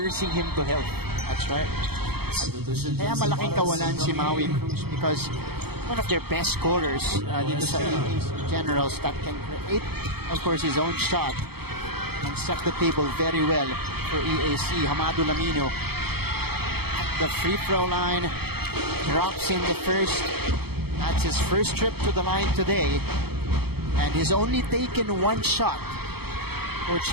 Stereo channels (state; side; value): late; left; 0.96 ms